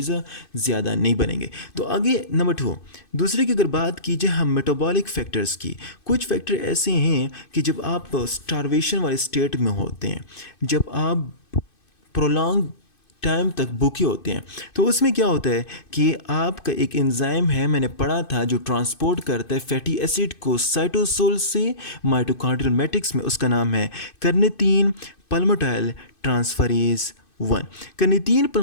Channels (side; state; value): right; late; 2.6 ms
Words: ज़्यादा नहीं बनेंगे। तो आगे नंबर 2, दूसरे की अगर बात कीजिए हम मेटाबॉलिक फैक्टर्स की, कुछ फैक्टर ऐसे हैं कि जब आप स्टारवेशन वाले स्टेट में होते हैं, जब आप प्रोलॉन्ग टाइम तक भूखे होते हैं, तो उसमें क्या होता है कि आपका एक एंजाइम है, मैंने पढ़ा था, जो ट्रांसपोर्ट करता है फैटी एसिड को साइटोसोल से माइटोकॉन्ड्रियल मैट्रिक्स में, उसका नाम है carnitine palmitoyl transferase 1। Carnitine